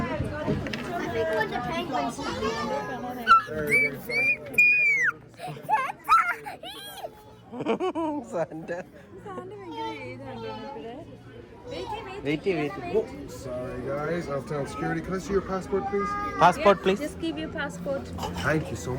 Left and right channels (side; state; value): both; identical; correlation 1.00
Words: I think when the penguins Sorry guys, Elftown Security. Can I see your passport, please? Passport, please. Just give your passport. Thank you so